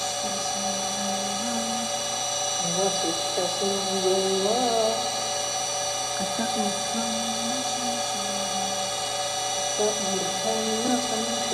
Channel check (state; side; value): identical; both; correlation 1.00